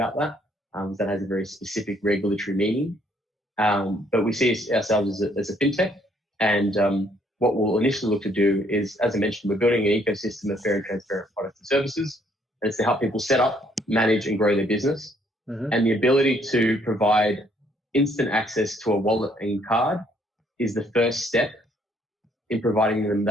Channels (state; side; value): normal; both; correlation 0.66